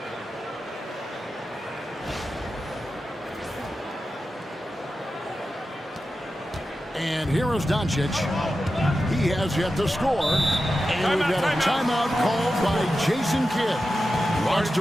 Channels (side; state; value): both; normal; correlation 0.92